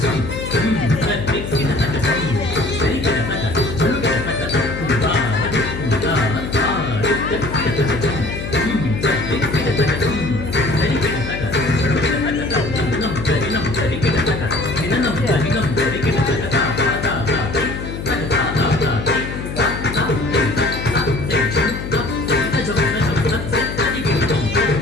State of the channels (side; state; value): left; noise; hum, 7 dB below the sound